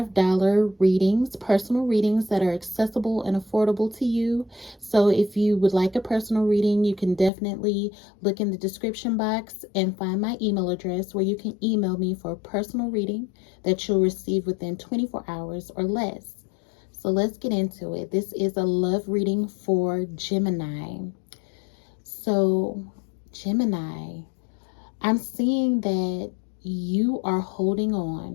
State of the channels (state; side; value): drops out; right; at 7.3 s